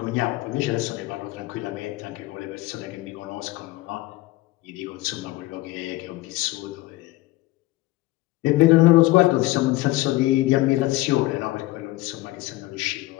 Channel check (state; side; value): quieter; right; 18.5 dB